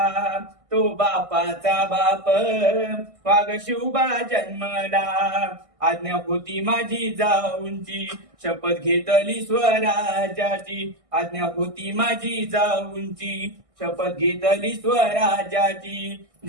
तो बापाचा बाप वाघ शिवबा जन्मला. आज्ञा होती माझी जाऊंची शपथ घेतली स्वराज्याची. आज्ञा होती माझी जाऊंची शपथ घेतली स्वराज्याची.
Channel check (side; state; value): left; late; 1.6 ms